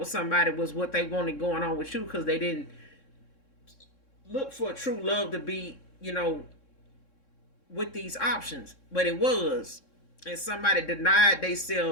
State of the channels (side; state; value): right; late; 3.6 ms